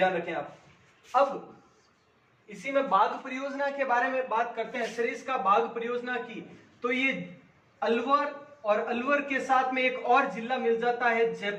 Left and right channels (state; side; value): identical; both; correlation 1.00